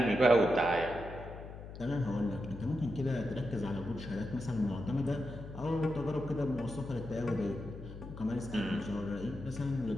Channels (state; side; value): noise; left; hum, 12 dB below the sound